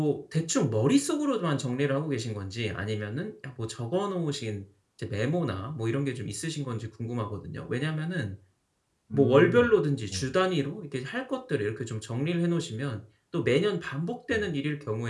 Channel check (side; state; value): both; identical; correlation 1.00